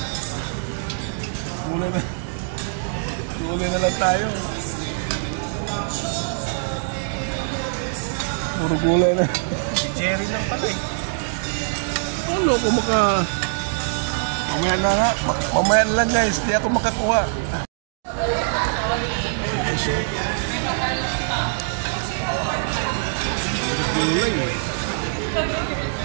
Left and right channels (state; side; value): silent; left; digital silence